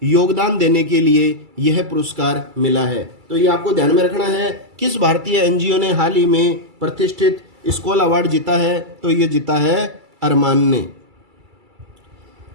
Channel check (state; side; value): late; left; 2.3 ms